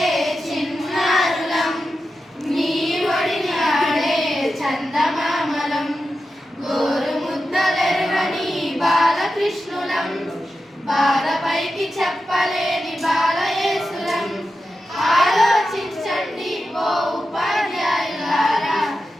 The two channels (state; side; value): normal; both; correlation 0.91